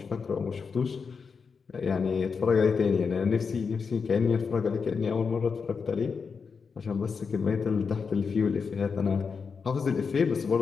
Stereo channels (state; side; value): quieter; right; 5.5 dB